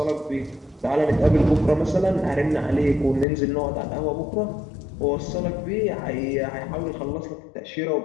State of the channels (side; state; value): right; drops out; at 3.2 s